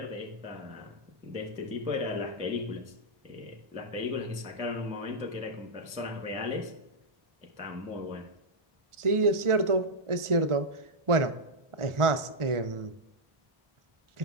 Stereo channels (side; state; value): left; late; 1.4 ms